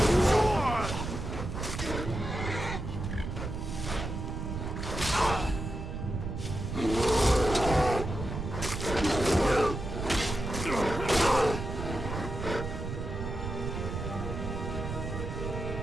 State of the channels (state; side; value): noise; right; rumble, 5 dB below the sound